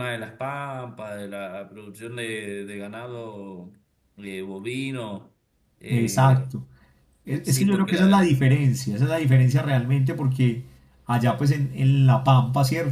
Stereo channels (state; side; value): identical; both; correlation 1.00